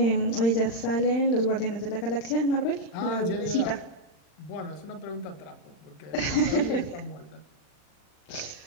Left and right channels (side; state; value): right; late; 39 ms